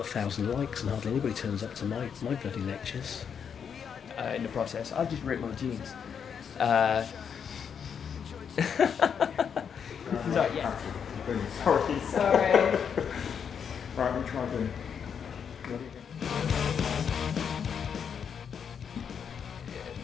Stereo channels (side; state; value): right; quieter; 7.3 dB